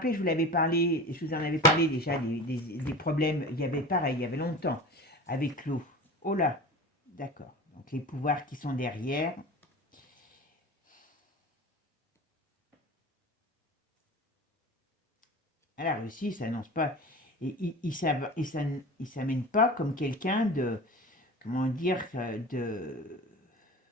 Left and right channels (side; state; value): both; normal; correlation 0.34